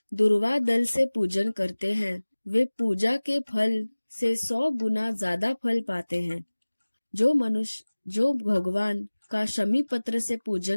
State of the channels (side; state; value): both; inverted; correlation -1.00